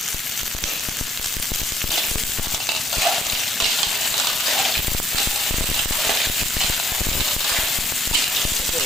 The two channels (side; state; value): both; normal; correlation 0.68